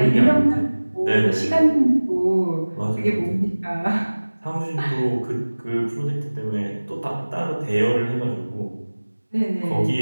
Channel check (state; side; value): inverted; both; correlation -1.00